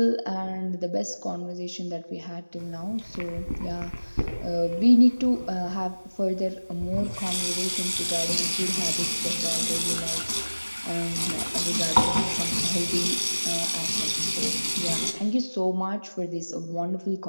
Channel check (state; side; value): inverted; both; correlation -1.00